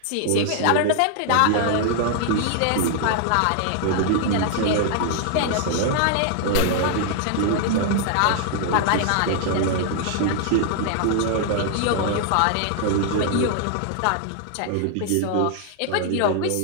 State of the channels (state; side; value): different; both; correlation 0.00